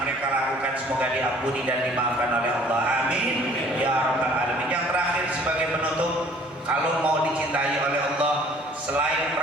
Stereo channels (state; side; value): normal; both; correlation 0.54